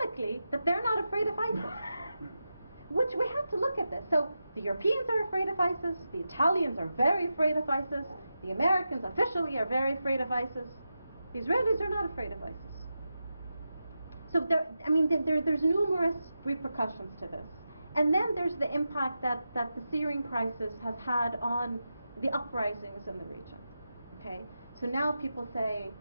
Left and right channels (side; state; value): both; inverted; correlation -0.90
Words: that they're not afraid of ISIS. Which we have to look at this. So the Europeans are afraid of ISIS, the Italians are very afraid of ISIS, the Americans officially are very afraid of ISIS. The Israelis are not afraid of ISIS. So there's numerous repercussions to this. And then there's the impact that the Syrian crisis has had on the uprisings in the region. Okay? So now people say,